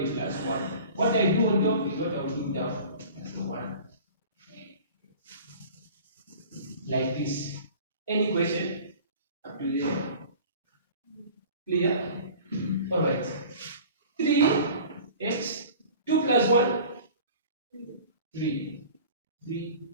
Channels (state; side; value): inverted; both; correlation -0.43